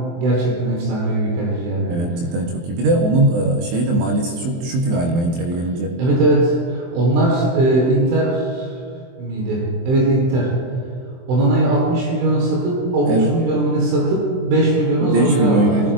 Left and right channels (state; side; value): late; left; 23 ms